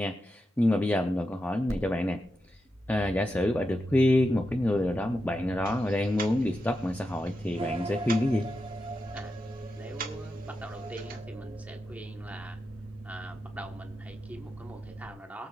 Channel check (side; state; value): both; normal; correlation 0.88